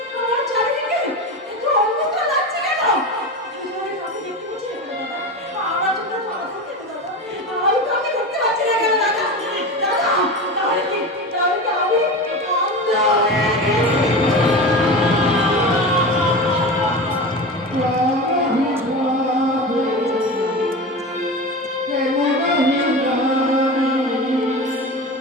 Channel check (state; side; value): normal; both; correlation 0.26